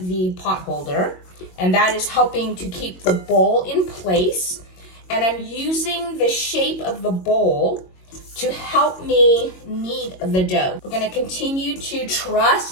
the pot holder, and that is helping to keep the bowl in place. And I'm using the shape of the bowl to help me knead the dough. We're gonna continue to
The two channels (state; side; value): late; right; 22 ms